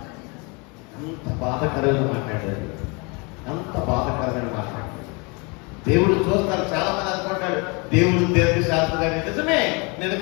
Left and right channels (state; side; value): quieter; right; 30.1 dB